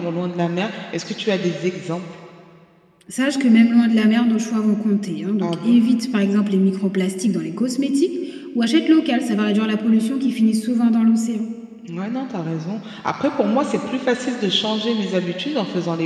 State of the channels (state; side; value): identical; both; correlation 1.00